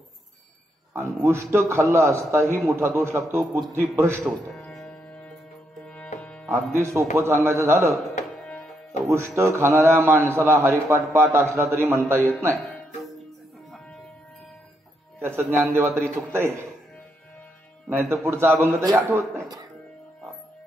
आणि उष्ट खाल्ला असताही मोठा दोष लागतो, बुद्धी भ्रष्ट होते. अगदी सोपं सांगायचं झालं तर उष्ट खाणाऱ्या माणसाला हरिपाठ पाठ असला तरी म्हणता येत नाही. त्याचं ज्ञानदेवा तरी चुकतंय, नाही तर पुढचा अभंग तरी आठवत नाही.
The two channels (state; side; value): normal; both; correlation 0.78